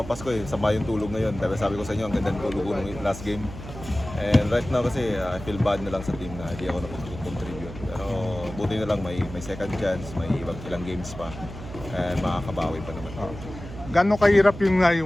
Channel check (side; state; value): right; noise; hum, 12 dB below the sound